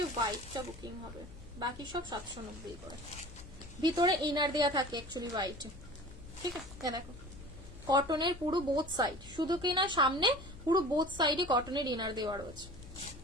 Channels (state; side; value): noise; left; hum, 17 dB below the sound